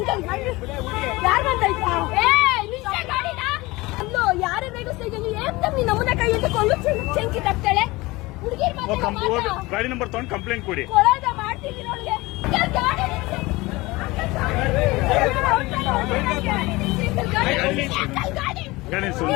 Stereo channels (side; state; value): right; quieter; 21.6 dB